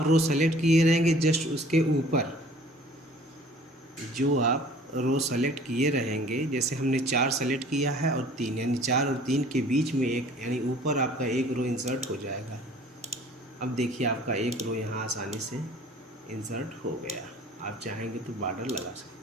रो सेलेक्ट किए रहेंगे जस्ट उसके ऊपर, जो आप रो सेलेक्ट किए रहेंगे, जैसे हमने 4 सेलेक्ट किया है और 3, यानी 4 और 3 के बीच में एक, यानी ऊपर आपका एक रो इंसर्ट हो जाएगा। अब देखिए आपका एक रो यहाँ आसानी से इंसर्ट हो गया। आप चाहेंगे तो बॉर्डर लगा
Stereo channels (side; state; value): both; normal; correlation 0.51